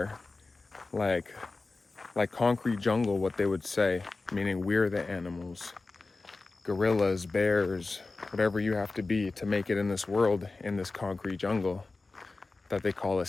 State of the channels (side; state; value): right; quieter; 3.6 dB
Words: like concrete jungle, what they would say, meaning we're the animals, gorillas, bears, whatever you have to be to make it in this world, in this concrete jungle that they call a